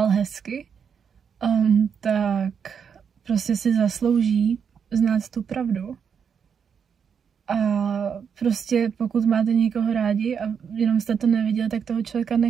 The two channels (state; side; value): quieter; left; 7.0 dB